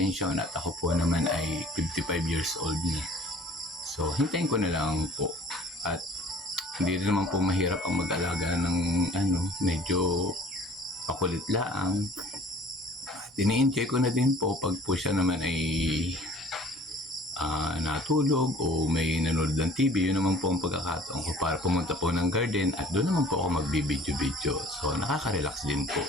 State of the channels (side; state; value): both; normal; correlation 0.50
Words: at ako po naman ay 55 years old na. So hintayin ko na lang po. At hindi rin naman po mahirap ang mag-alaga ng medyo pakulit laang. Ini-enjoy ko na din po pag po siya naman ay natulog o may nanonood ng TV. Yun naman po ang pagkakataon ko para pumunta po ng garden at doon naman po ako magbibidyo-video. So nakaka-relax din po